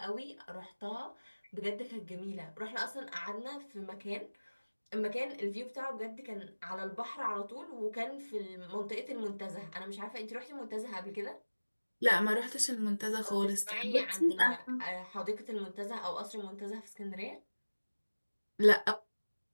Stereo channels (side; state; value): both; inverted; correlation -1.00